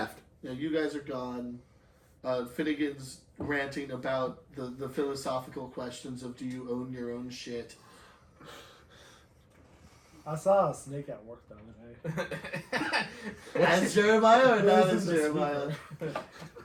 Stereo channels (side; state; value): both; identical; correlation 1.00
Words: Yeah, you guys are gone. Finnegan's ranting about the philosophical questions of do you own your own shit? I saw a snake at work the other day. As Jeremiah or not as This is the Jeremiah?